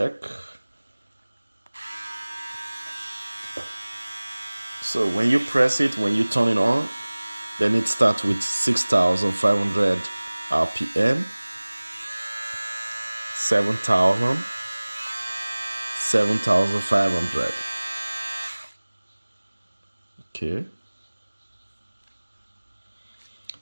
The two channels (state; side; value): inverted; both; correlation -1.00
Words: So when you press it, when you turn it on, then it starts with 6,500 RPM, 7,000, 7,500. Okay.